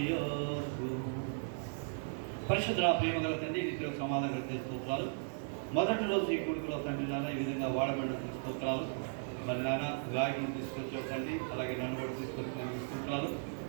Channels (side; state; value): left; silent; digital silence